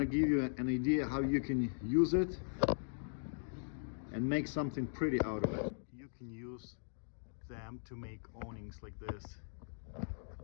give you an idea how you can use it and make something pretty out of it. You can use them to make awnings like this.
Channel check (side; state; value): right; silent; digital silence